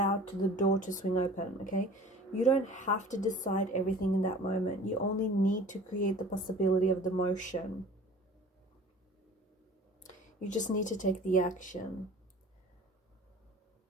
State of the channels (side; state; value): both; normal; correlation 0.45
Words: to the door to swing open, okay? You don't have to decide everything in that moment. You only need to create the possibility of the motion. You just need to take the action.